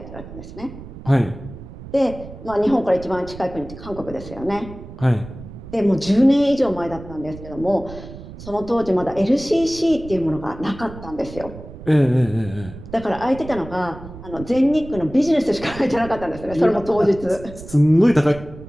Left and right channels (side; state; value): right; noise; rumble, 14 dB below the sound